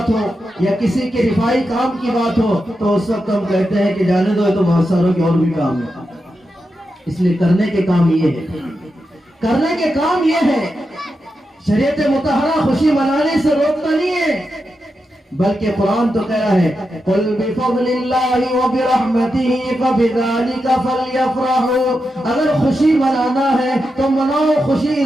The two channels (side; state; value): both; normal; correlation 0.88